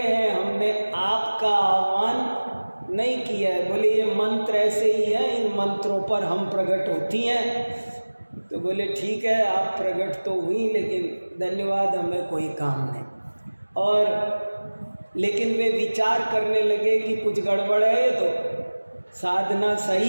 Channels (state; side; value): inverted; both; correlation -1.00